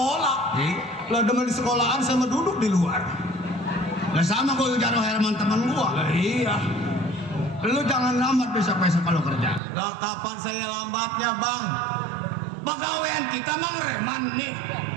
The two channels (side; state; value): left; drops out; at 9.6 s